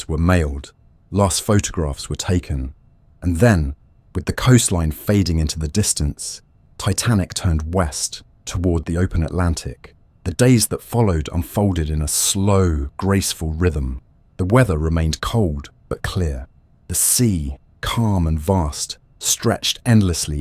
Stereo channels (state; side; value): identical; both; correlation 1.00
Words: were mailed, last photographs were taken, and then, with the coastline fading into the distance, Titanic turned west toward the open Atlantic. The days that followed unfolded in a slow, graceful rhythm. The weather remained cold but clear. The sea, calm and vast, stretched